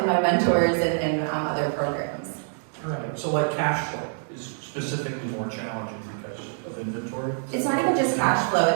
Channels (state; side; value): silent; left; digital silence